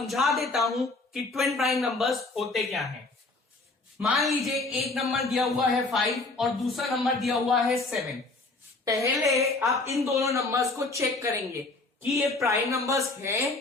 देता हूं कि ट्विन प्राइम नंबर्स होते क्या हैं। मान लीजिए एक नंबर दिया हुआ है 5 और दूसरा नंबर दिया हुआ है 7। पहले आप इन दोनों नंबर्स को चेक करेंगे कि ये प्राइम नंबर्स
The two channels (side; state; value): right; quieter; 3.3 dB